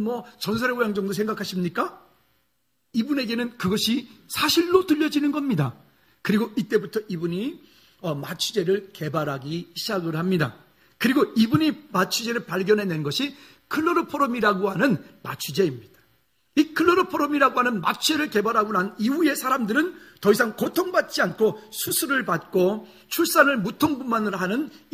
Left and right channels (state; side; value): identical; both; correlation 1.00